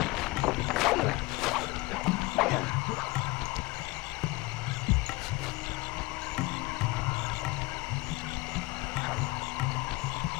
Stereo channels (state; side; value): quieter; right; 22.3 dB